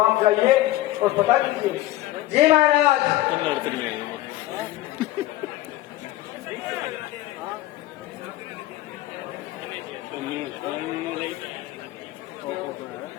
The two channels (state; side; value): quieter; right; 16.0 dB